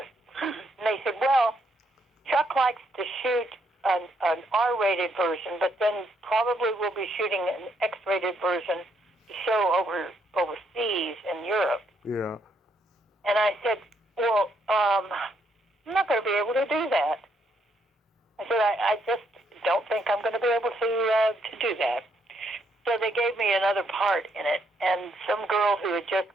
And they said, "Well, Chuck likes to shoot an R-rated version, but then probably we'll be shooting an X-rated version to show overseas in Europe." Yeah. And I said, "Well, I'm not going to be able to do that." I said, I just don't think I'm going to be able to do that. So they gave me another part in it, and some girl who had just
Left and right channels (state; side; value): normal; both; correlation 0.74